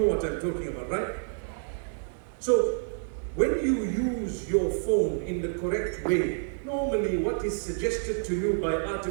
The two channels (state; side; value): silent; left; 59 dB below the other